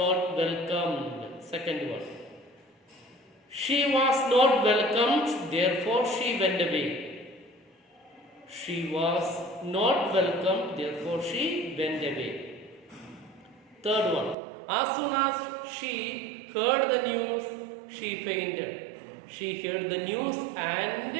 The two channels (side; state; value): left; drops out; at 14.4 s